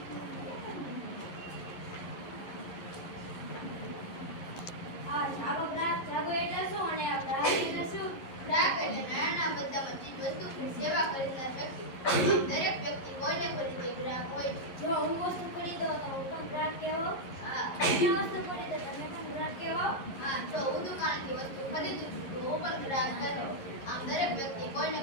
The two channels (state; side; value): late; right; 11 ms